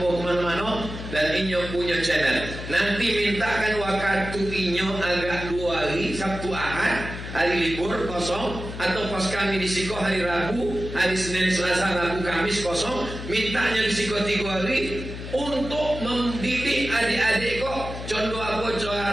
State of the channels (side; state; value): left; noise; hum, 9 dB below the sound